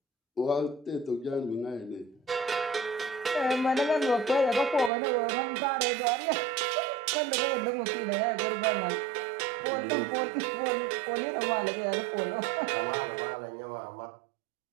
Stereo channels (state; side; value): drops out; left; at 4.9 s